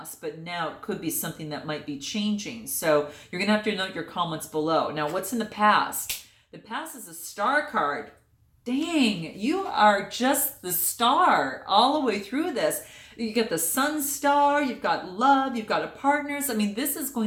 but now it could be something that might be changing. So you're going to have to note your comments below. Now, what's in the past? The past is a Star card. Dang, you are just the star all the way through this. You get the sun star, you've got love, you've got a partners. I mean, this is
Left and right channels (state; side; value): identical; both; correlation 1.00